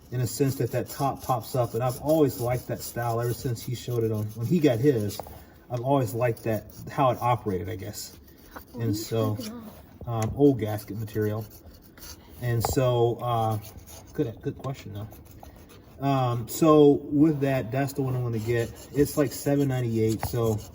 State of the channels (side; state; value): both; identical; correlation 1.00